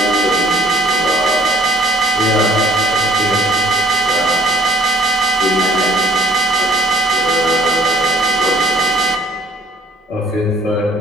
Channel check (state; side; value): normal; both; correlation 0.55